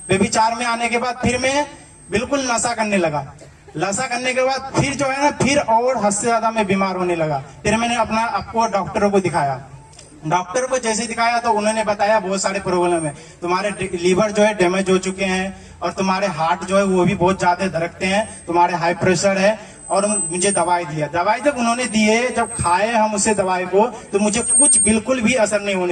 व्यभिचार में आने के बाद फिर मैं बिल्कुल नशा करने लगा। नशा करने के बाद फिर जो है ना, फिर और हद से ज्यादा मैं बीमार होने लगा। फिर मैंने आपको डॉक्टरों को दिखाया। डॉक्टर को जैसे दिखाया तो उन्होंने बताया बहुत सारे प्रॉब्लम है, तुम्हारे लीवर जो है डैमेज हो चुके हैं और तुम्हारे हार्ट जो है वो भी बहुत ज्यादा धड़कते हैं, तुम्हारे हाई प्रेशर है। और मुझे दवाई दिया। दवाई जब उन्होंने दिए, जब खाए हम उसे दवाई को, तो मुझे कुछ बिल्कुल भी असर नहीं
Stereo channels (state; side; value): identical; both; correlation 1.00